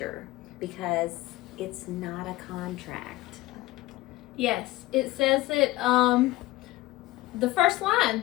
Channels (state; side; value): quieter; right; 17.6 dB